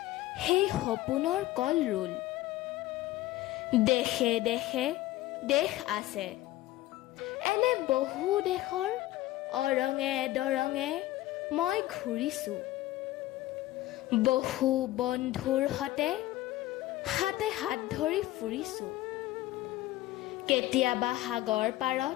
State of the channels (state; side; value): quieter; right; 16.2 dB